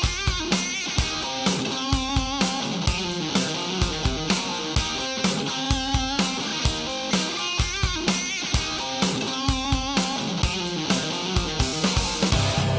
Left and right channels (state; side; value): identical; both; correlation 1.00